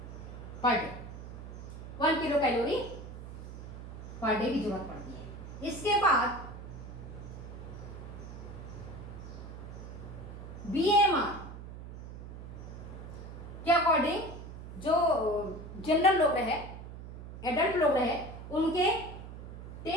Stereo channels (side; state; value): right; noise; hum, 11 dB below the sound